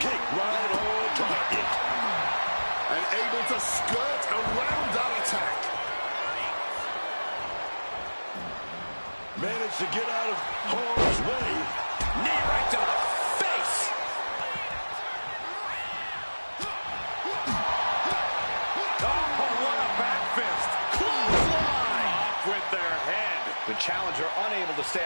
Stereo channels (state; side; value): inverted; both; correlation -1.00